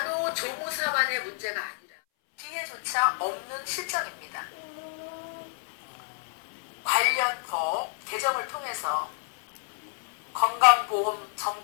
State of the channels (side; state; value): right; silent; 58 dB below the other